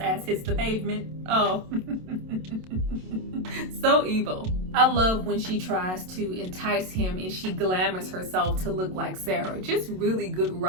hits the pavement? Oh, so evil. I love when she tries to entice him and she glamours herself to look like Sarah. Just really good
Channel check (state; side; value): late; left; 27 ms